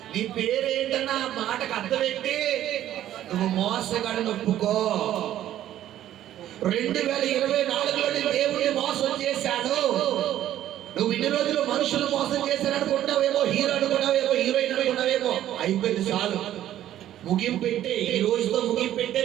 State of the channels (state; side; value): quieter; left; 12.3 dB